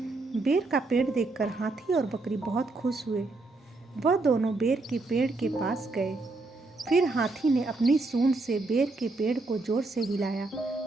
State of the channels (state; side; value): quieter; left; 3.3 dB